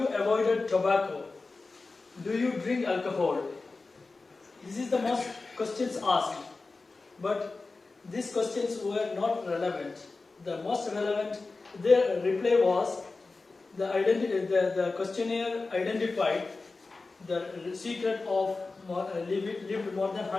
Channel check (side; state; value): right; quieter; 3.7 dB